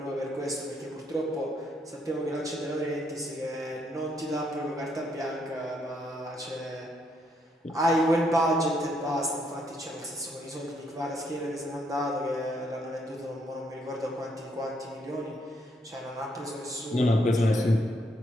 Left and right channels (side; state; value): both; normal; correlation 0.73